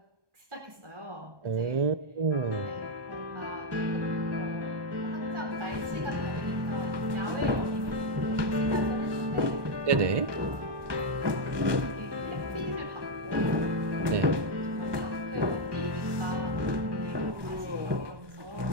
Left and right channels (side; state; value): left; late; 1.2 ms